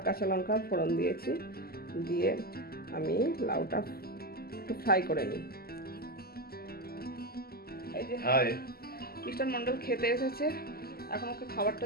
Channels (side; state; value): right; late; 0.45 ms